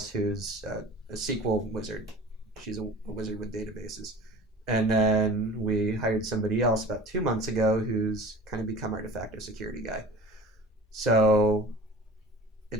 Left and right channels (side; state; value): both; normal; correlation 0.40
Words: who's a SQL wizard. She's a wizard with databases. And then we hired somebody else about 2 months ago who's kind of become our de facto security guy. So